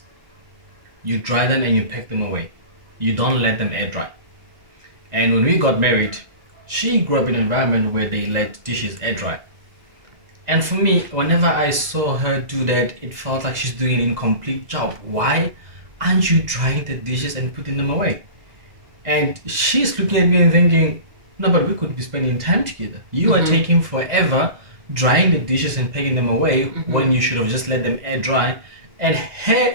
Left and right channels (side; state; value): left; late; 2.0 ms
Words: you dry them, and you pack them away. You don't let them air dry. And when we got married, she grew up in an environment where they let dishes air dry. And for me, whenever I saw her do that, it felt like she's doing an incomplete job. Why aren't you drying the dishes and putting them away? And she's looking at me and thinking, no, but we could be spending time together. You are taking forever drying the dishes and packing them away when you should have just let them air dry. And her